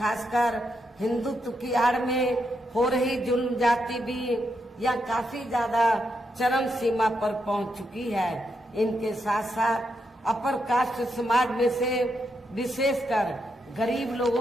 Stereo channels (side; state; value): both; normal; correlation 0.82